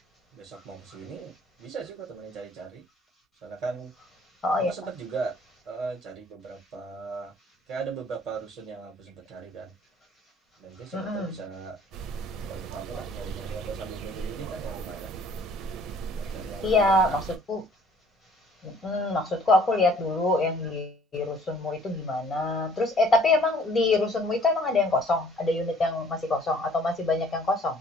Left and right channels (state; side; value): normal; both; correlation 0.56